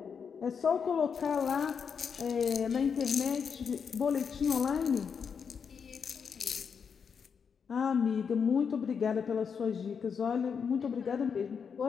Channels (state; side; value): quieter; right; 6.5 dB